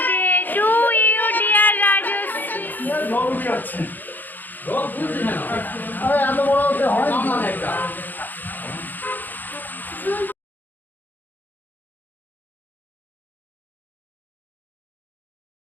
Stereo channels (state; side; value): late; right; 0.087 ms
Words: to you dear Rajashree.